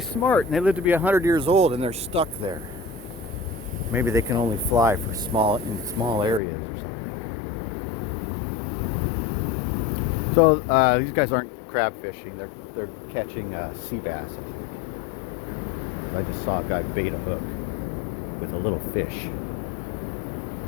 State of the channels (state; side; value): drops out; right; at 6.4 s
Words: smart, and they live to be 100 years old, and they're stuck there. Maybe they can only fly for in small areas or something. So these guys aren't crab fishing. They're catching sea bass. I just saw a guy bait a hook with a little fish.